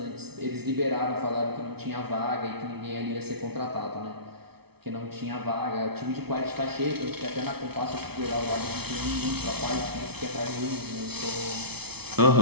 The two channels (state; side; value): late; left; 0.97 ms